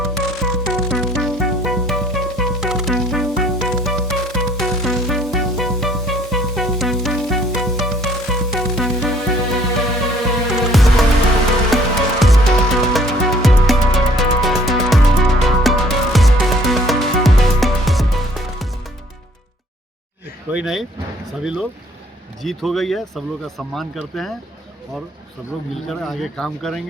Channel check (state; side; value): normal; both; correlation 0.59